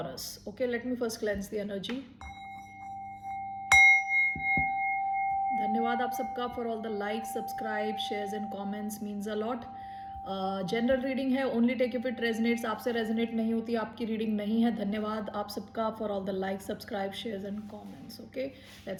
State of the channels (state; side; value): identical; both; correlation 1.00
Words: Okay, let me first cleanse the energy. धन्यवाद आप सबका for all the like, subscribe, shares and comments, means a lot. General reading है, only take if it resonates. आपसे resonate नहीं होती आपकी reading नहीं है। धन्यवाद आप सबका for all the like, subscribe, shares and comments. Okay,